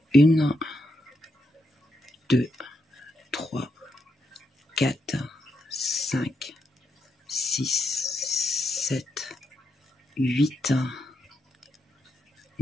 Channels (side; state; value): both; normal; correlation 0.82